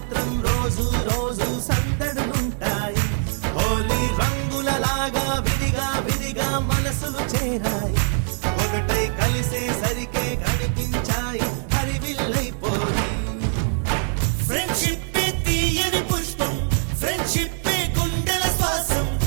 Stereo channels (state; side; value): silent; left; digital silence